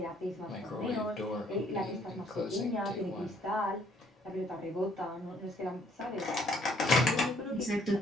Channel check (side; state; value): both; normal; correlation 0.64